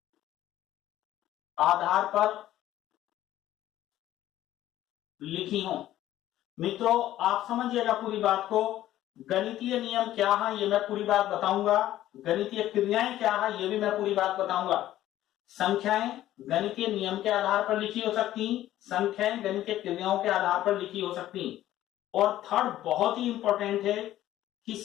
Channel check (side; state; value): right; quieter; 13.6 dB